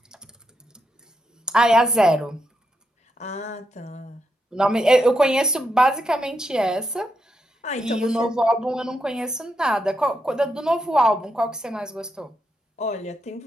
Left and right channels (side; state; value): both; normal; correlation 0.82